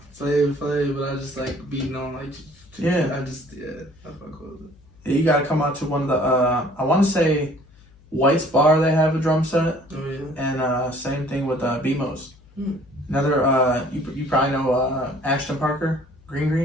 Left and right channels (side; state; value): left; noise; hum, 27 dB below the sound